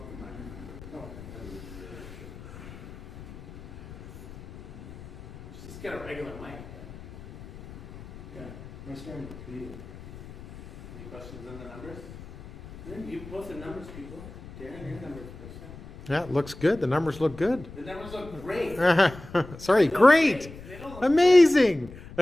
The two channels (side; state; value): left; noise; rumble, 16 dB below the sound